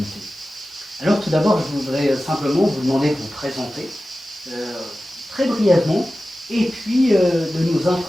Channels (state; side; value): normal; both; correlation 0.95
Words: Alors tout d'abord, je voudrais simplement vous demander de vous présenter très brièvement, et puis de nous